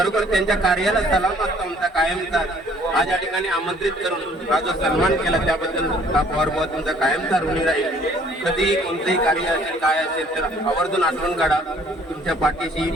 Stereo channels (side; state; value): both; normal; correlation 0.58